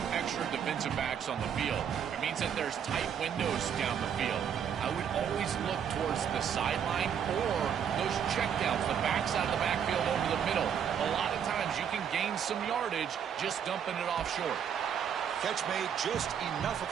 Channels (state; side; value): quieter; left; 8.2 dB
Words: extra defensive backs on the field. It means that there's tight windows down the field. I would always look towards the sideline or those checkdowns, the backside of the backfield over the middle. A lot of times you can gain some yardage just dumping it off short. Catch made, just enough of